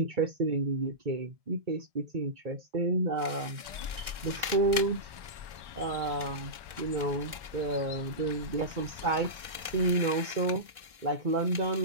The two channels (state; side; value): late; left; 1.4 ms